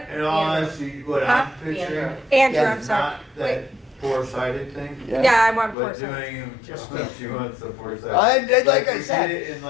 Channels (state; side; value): drops out; right; at 5.8 s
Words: right? In all honesty, what Huh? I'm picturing Andrew, Yeah, I'm is sorry. not Wait, that four-sided thing, yeah, I want but 4. doing them, just she wants the four-sided. Like I we said. did it in